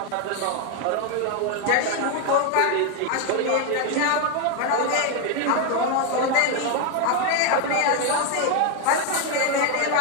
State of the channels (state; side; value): different; both; correlation 0.01